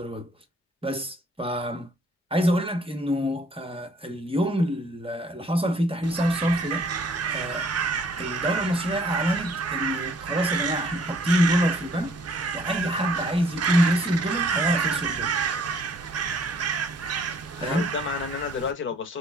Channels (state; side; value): normal; both; correlation 0.60